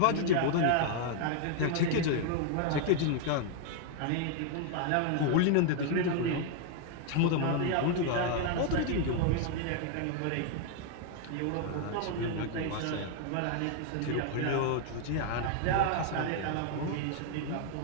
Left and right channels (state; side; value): different; both; correlation 0.00